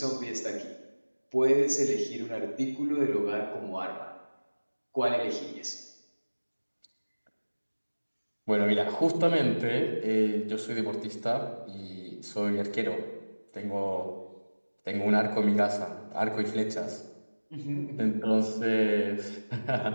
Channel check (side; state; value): both; inverted; correlation -1.00